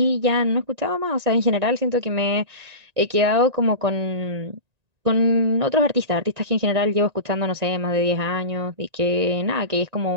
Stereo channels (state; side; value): late; left; 1.9 ms